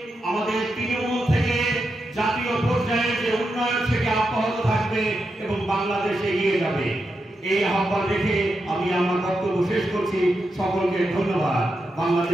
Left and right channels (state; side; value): normal; both; correlation 0.86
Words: আমাদের তৃণমূল থেকে জাতীয় পর্যায়ে যে উন্নয়ন থেকে অব্যাহত থাকবে এবং বাংলাদেশ এগিয়ে যাবে। এই আহ্বান রেখে আমি আমার বক্তব্য শেষ করছি। সকলকে ধন্যবাদ।